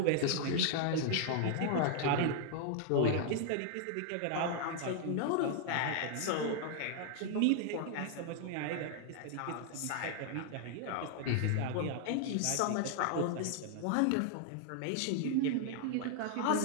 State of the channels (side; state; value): both; different; correlation 0.00